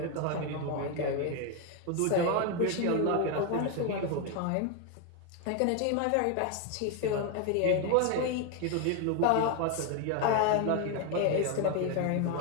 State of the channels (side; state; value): both; different; correlation 0.01